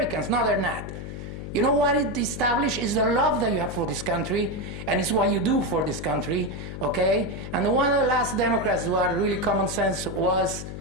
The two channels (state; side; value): noise; left; hum, 8 dB below the sound